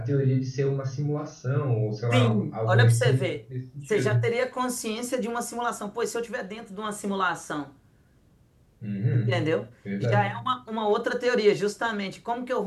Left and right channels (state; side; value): identical; both; correlation 1.00